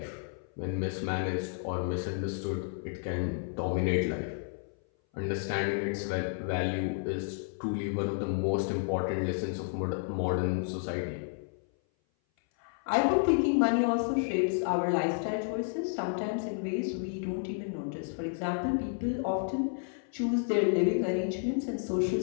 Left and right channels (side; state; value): right; silent; 57 dB below the other